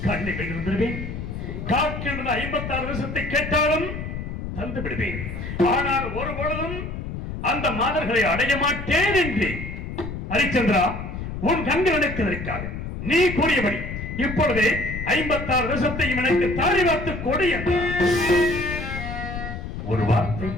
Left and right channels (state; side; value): noise; left; rumble, 7 dB below the sound